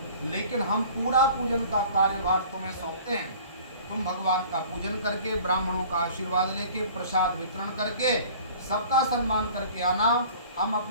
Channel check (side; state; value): both; inverted; correlation -0.47